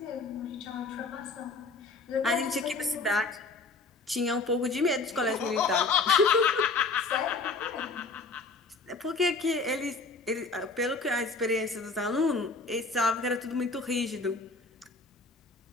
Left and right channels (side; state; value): right; quieter; 3.8 dB